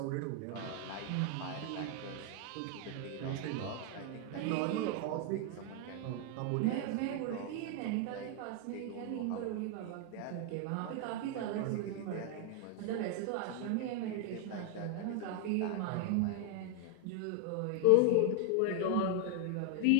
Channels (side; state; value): both; different; correlation 0.00